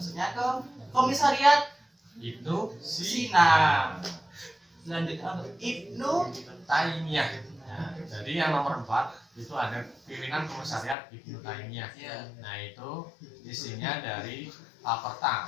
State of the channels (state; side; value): drops out; right; at 11.0 s